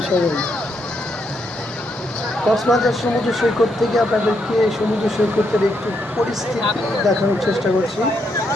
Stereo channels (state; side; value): normal; both; correlation 0.77